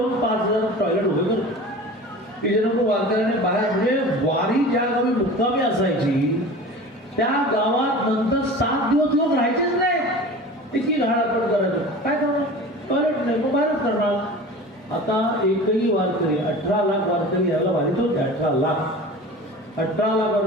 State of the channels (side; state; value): both; normal; correlation 0.37